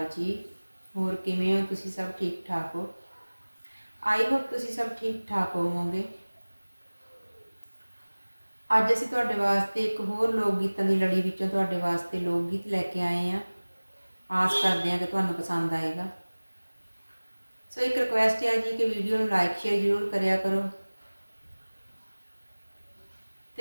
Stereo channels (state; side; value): inverted; both; correlation -1.00